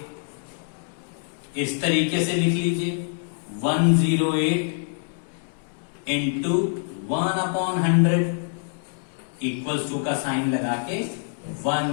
इस तरीके से लिख लीजिए, 108 इंटू 1/100 इक्वल्स टू का साइन लगा के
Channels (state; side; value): silent; right; digital silence